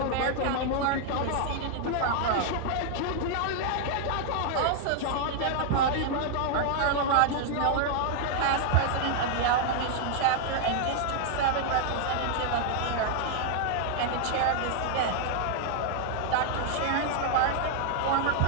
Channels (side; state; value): both; different; correlation 0.00